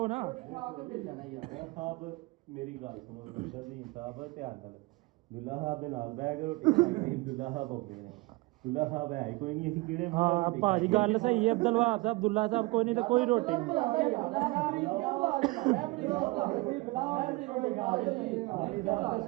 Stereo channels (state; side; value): quieter; left; 23.4 dB